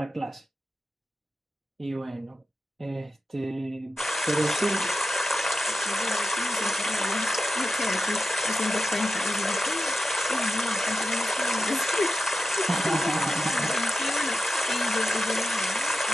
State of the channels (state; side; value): normal; both; correlation 0.91